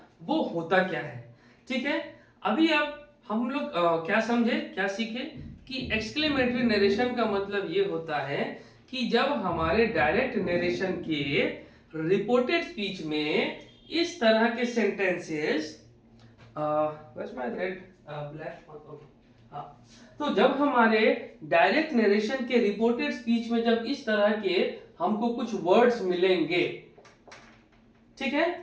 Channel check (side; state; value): both; identical; correlation 1.00